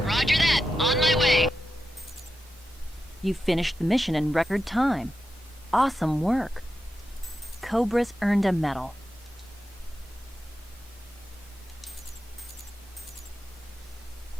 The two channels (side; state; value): both; normal; correlation 0.89